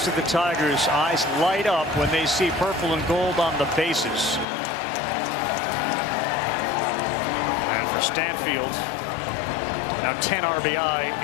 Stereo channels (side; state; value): right; drops out; at 4.5 s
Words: of the Tigers' eyes light up when they see purple and gold on the bases. And for Stanfield, now 10 RBI